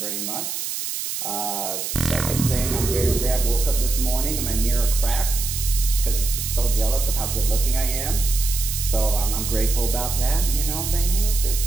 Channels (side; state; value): right; noise; hiss, 4 dB below the sound